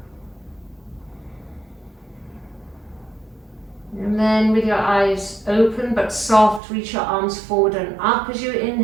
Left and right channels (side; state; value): left; drops out; at 6.6 s